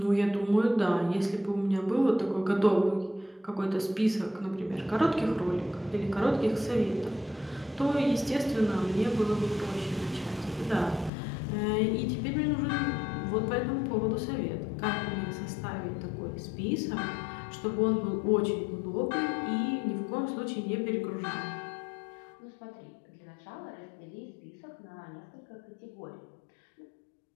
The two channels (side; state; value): right; drops out; at 11.1 s